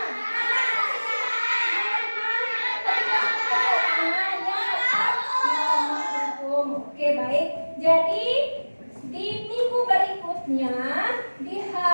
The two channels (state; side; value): inverted; both; correlation -1.00